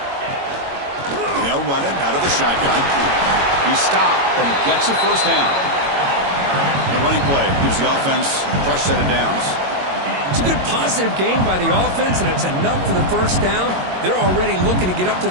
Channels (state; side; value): late; left; 22 ms